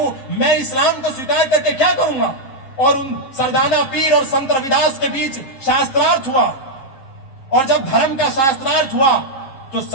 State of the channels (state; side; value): late; right; 7.5 ms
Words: मैं इस्लाम को स्वीकार करके क्या करूंगा। और उन सरदाना पीर और संत रविदास के बीच शास्त्रार्थ हुआ। और जब धर्म का शास्त्रार्थ हुआ तो